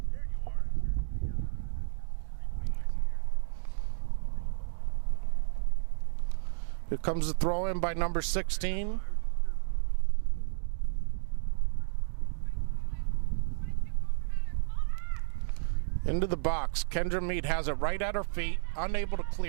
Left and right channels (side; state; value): left; silent; digital silence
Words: Here comes the throw in by number 16. Into the box. Kendra Mead has it right at her feet, unable to